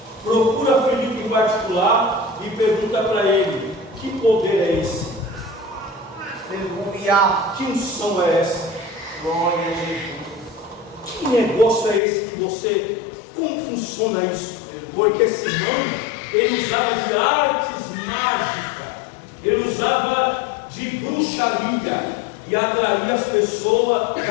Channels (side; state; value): right; drops out; at 12.0 s